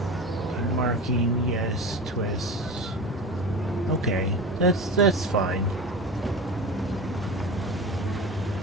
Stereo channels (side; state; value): both; normal; correlation 0.30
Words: marking, yes, twists. Okay, that's fine.